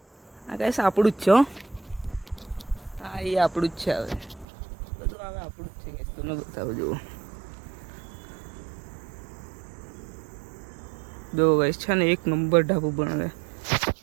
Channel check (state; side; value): drops out; left; at 4.5 s